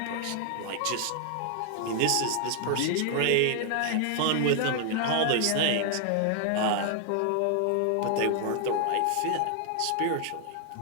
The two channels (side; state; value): both; different; correlation 0.00